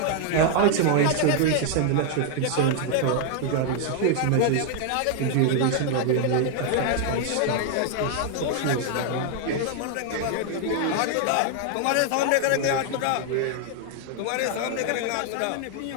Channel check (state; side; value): different; both; correlation 0.00